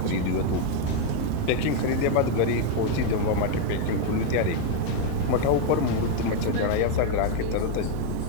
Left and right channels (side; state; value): both; different; correlation 0.01